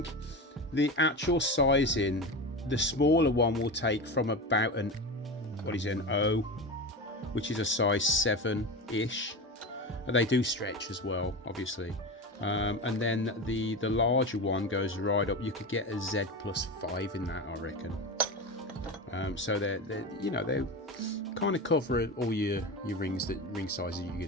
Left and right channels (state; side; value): normal; both; correlation 0.24